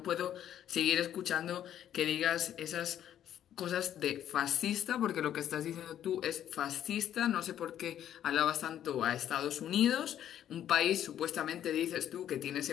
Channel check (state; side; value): quieter; right; 10.7 dB